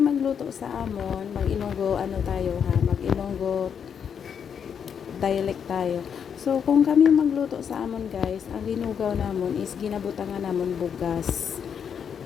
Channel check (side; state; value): right; quieter; 7.5 dB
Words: magluto sa amon, mag-Ilonggo mag-Ilonggo dialect tayo. So kung kami magluto sa amon guys, ang linugaw namon is ginabutangan namon bugas.